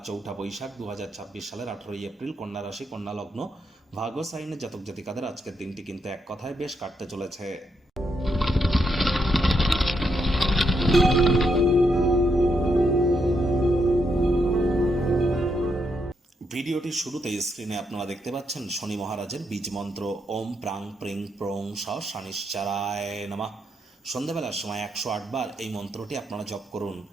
4 বৈশাখ 2026 সালের 18 এপ্রিল, কন্যা রাশি, কন্যা লগ্ন, ভাগ্য সাইনের জাতক জাতিকাদের আজকের দিনটি কিন্তু এক কথায় বেশ কাটতে চলেছে। ভিডিওটির শুরুতেই স্ক্রিনে আপনারা দেখতে পাচ্ছেন শনি মহারাজের বীজ মন্ত্র ওম প্রাং প্রিং প্রং স শনিশ্চারায় নমঃ। সন্ধ্যাবেলার সময় 108 বার এই মন্ত্রটি আপনারা জপ করুন।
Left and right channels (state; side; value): normal; both; correlation 0.79